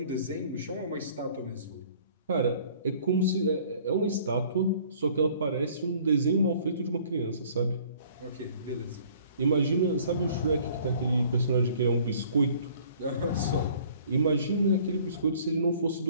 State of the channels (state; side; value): inverted; both; correlation -0.54